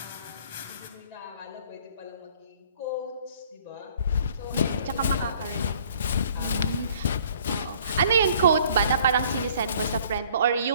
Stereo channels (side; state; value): both; inverted; correlation -0.57